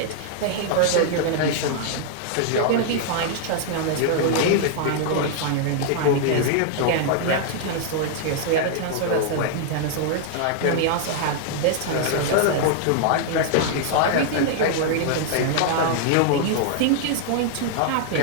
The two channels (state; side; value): different; both; correlation -0.01